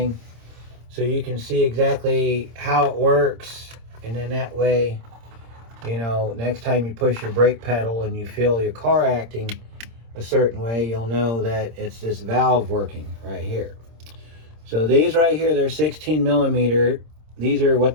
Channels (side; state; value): left; late; 26 ms